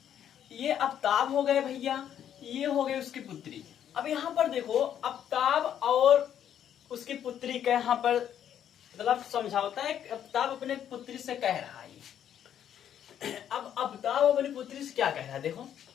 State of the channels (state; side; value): quieter; right; 9.8 dB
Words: ये अब्ताब हो गए भैया, ये हो गई उसकी पुत्री। अब यहां पर देखो अब्ताब और उसकी पुत्री का यहां पर मतलब समझाता है। अब्ताब अपने पुत्री से कह रहा है। अब अब्ताब अपनी पुत्री से क्या कह रहा है देखो,